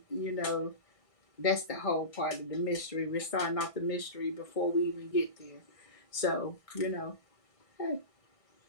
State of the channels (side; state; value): right; late; 1.6 ms